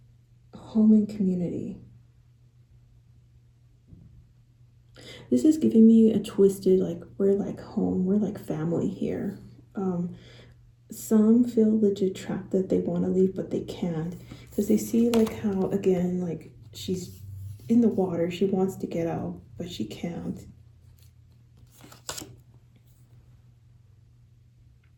home and community. This is giving me a twisted, like, we're like home, we're like family here. Some feel legit trapped that they want to leave, but they can't. Because they see, like, how, again, like, she's in the water. She wants to get out, but she can't.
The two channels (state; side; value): identical; both; correlation 1.00